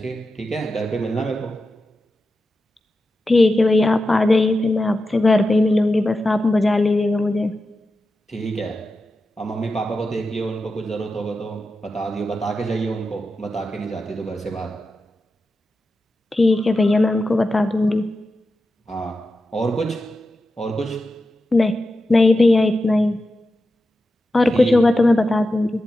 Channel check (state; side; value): normal; both; correlation 0.91